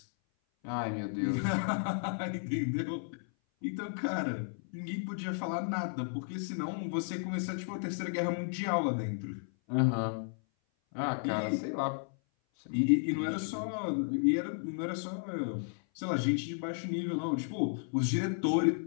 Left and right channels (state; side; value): silent; right; 55 dB below the other